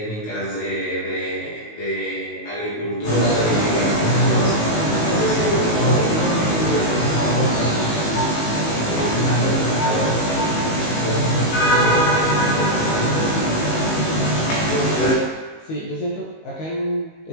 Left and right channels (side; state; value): right; late; 19 ms